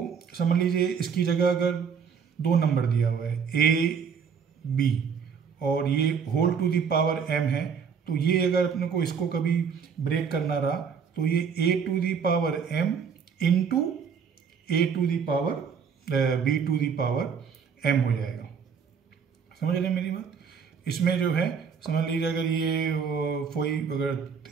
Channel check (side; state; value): left; quieter; 6.5 dB